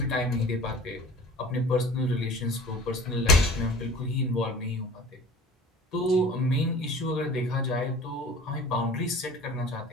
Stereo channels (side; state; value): both; normal; correlation 0.44